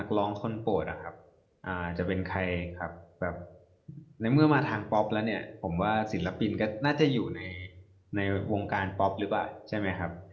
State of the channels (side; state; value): both; identical; correlation 1.00